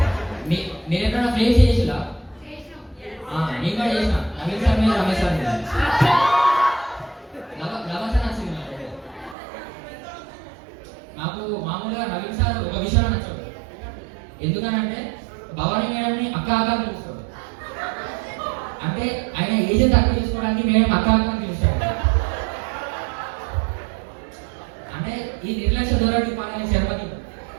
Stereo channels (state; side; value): drops out; left; at 9.3 s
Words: మీరు ఎప్పుడైనా ఫ్లేమ్స్ చేసిరా? నేను కూడా చేసిన. నవీన్ సార్ మీద రమేష్ సార్ మీద లవర్ సార్ నచ్చింది నాకు. మామూలుగా నవీన్ సార్ ఒక విషయంలో నచ్చాడు. ఎందుకనంటే భవానీ మేడంని అక్క అక్క పిలుస్తాడు. అంటే ఆయన ఏజ్ తక్కువ చేసుకోవడానికి మేడం అక్క అక్క పిలుస్తాడు. ఈ నిర్లక్ష్య ధోరణి పాలన శర్మకి